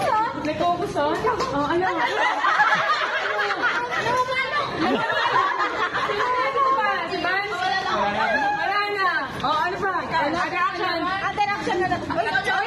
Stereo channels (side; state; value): both; identical; correlation 1.00